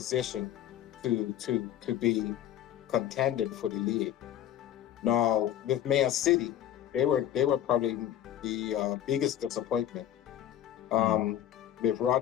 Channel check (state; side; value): quieter; right; 11.4 dB